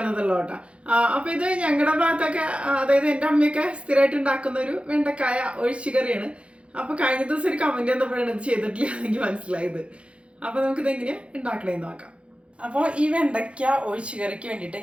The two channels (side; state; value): left; late; 0.060 ms